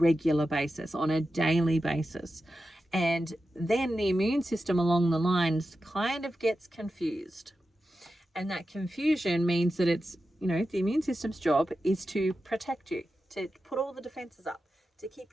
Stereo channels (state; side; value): normal; both; correlation 0.91